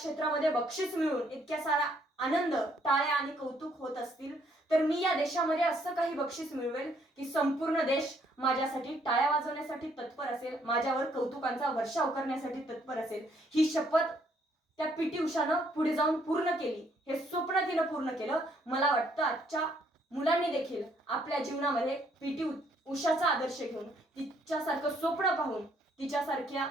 बक्षीस मिळून इतक्या सारा आनंद, टाळ्या आणि कौतुक होत असतील तर मी या देशामध्ये असं काही बक्षीस मिळवेल की संपूर्ण देश माझ्यासाठी टाळ्या वाजवण्यासाठी तत्पर असेल, माझ्यावर कौतुकांचा वर्षाव करण्यासाठी तत्पर असेल. ही शपथ त्या पीटी उषानं पुढे जाऊन पूर्ण केली. हे स्वप्न तिनं पूर्ण केलं. मला वाटतं आजच्या मुलांनी देखील आपल्या जीवनामध्ये पीटी उषाचा आदर्श घेऊन, तिच्यासारखं स्वप्न पाहून, तिच्यासारख्या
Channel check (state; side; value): normal; both; correlation 0.68